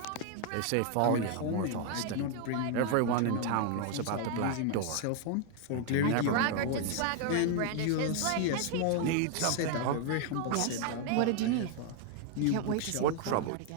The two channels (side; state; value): both; different; correlation 0.00